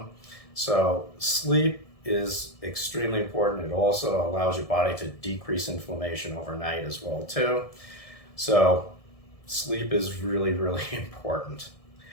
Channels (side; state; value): right; late; 1.7 ms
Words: So sleep is extremely important. It also allows your body to decrease inflammation overnight as well too. So sleep is really, really important.